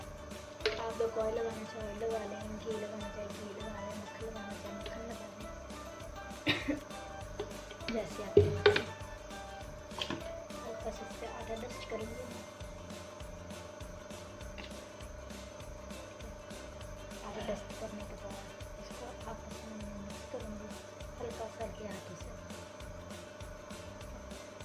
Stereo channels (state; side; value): identical; both; correlation 1.00